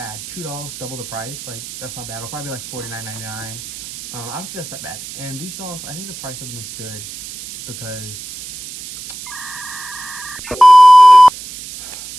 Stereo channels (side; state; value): right; noise; hiss, 13 dB below the sound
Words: $2, double the price. Like, that's not bad. It'll probably be like $49.99. I don't think that's that bad. And these dolls, I think the price of them is good because